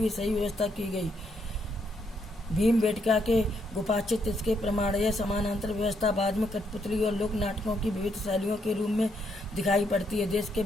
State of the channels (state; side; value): normal; both; correlation 0.75